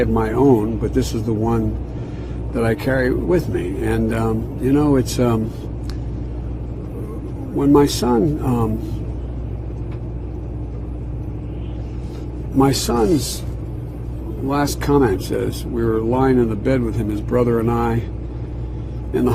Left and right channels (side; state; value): both; identical; correlation 1.00